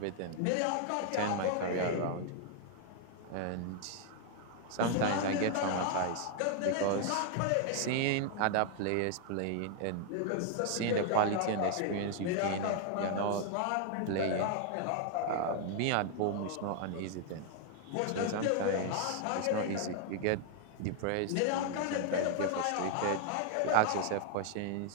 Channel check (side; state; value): both; different; correlation 0.00